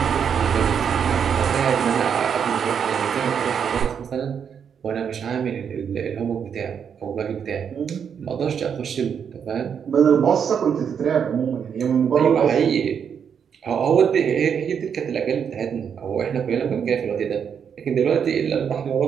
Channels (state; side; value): quieter; left; 7.5 dB